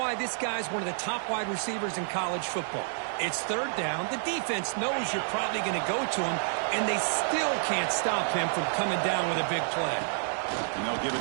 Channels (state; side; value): silent; left; 58 dB below the other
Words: this guy's one of the top wide receivers in college football. It's 3rd down. The defense knows you're probably going to go to him, and they still can't stop him from coming down with a big play. And they'll give